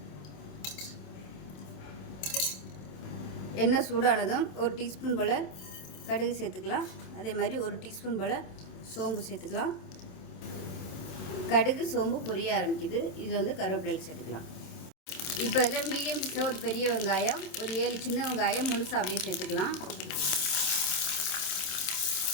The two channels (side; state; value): right; late; 27 ms